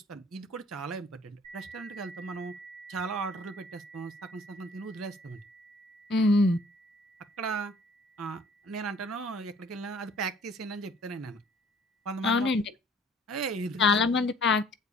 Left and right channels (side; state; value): both; normal; correlation 0.56